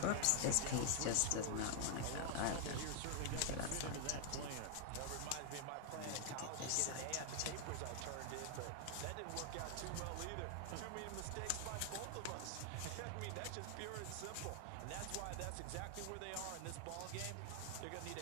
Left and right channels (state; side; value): different; both; correlation 0.00